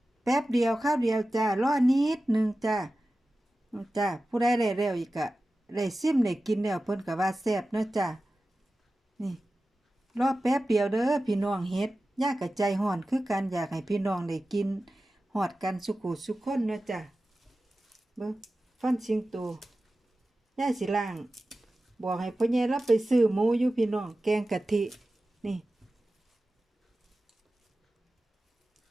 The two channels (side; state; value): both; normal; correlation 0.95